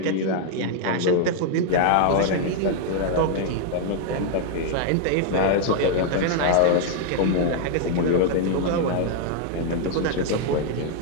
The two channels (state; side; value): different; both; correlation -0.01